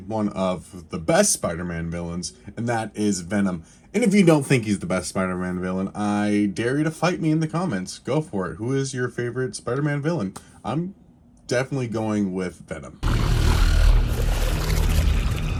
of the best Spider-Man villains, and that is Venom. And if you don't think he's the best Spider-Man villain, I dare you to fight me in the comments. Go for it. Who is your favorite Spider-Man villain? I'm definitely going with Venom.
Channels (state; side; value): identical; both; correlation 1.00